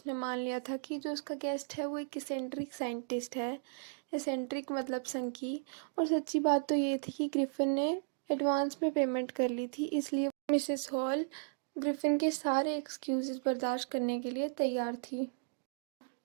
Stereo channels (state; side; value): silent; left; digital silence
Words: मान लिया था कि जो उसका गेस्ट है वो एक इसेंट्रिक साइंटिस्ट है। इसेंट्रिक मतलब संकी। और सच्ची बात तो ये थी कि ग्रिफिन ने एडवांस में पेमेंट कर ली थी, इसलिए मिसेस हॉल ग्रिफिन के सारे एक्सक्यूजेस बर्दाश्त करने के लिए तैयार थी।